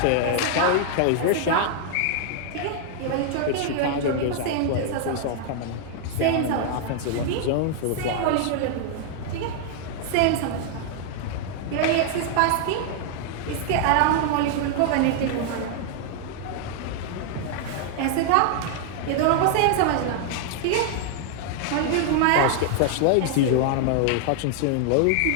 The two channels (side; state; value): both; different; correlation 0.00